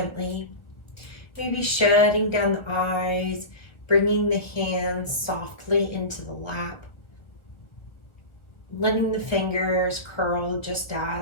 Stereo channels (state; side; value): late; right; 1.4 ms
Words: Maybe shutting down the eyes, bringing the hands softly into the lap, letting the fingers curl just